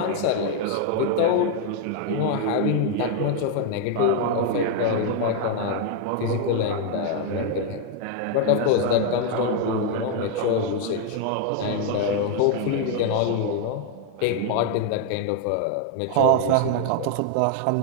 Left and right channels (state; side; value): different; both; correlation 0.00